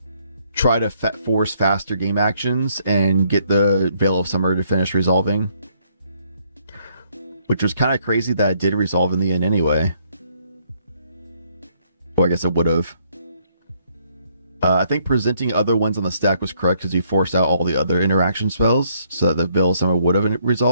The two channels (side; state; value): both; inverted; correlation -0.69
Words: try to force faster game actions and get the Veil of Summer to finish resolving, which was kind of crazy that it did resolve in the end anyway. Well, I guess it would have. I think presenting other ones on the stack was correct because you forced out all the other interaction spells so that the Veil of Summer would have